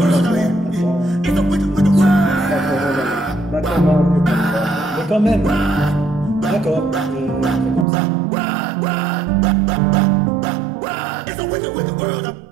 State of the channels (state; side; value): drops out; left; at 7.9 s